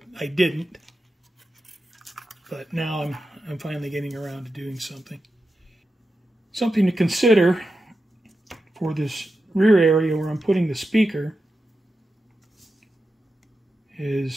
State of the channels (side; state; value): both; normal; correlation 0.90